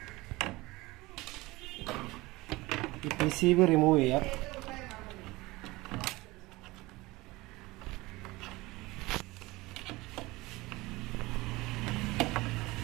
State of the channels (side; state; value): left; quieter; 21.0 dB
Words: ഈ PCB റിമൂവ് ചെയ്യാം.